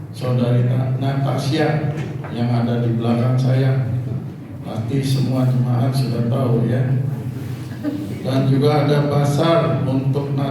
saudari Natasha yang ada di belakang saya. Pasti semua jemaat sudah tahu ya. Dan juga ada pasar untuk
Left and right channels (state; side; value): identical; both; correlation 1.00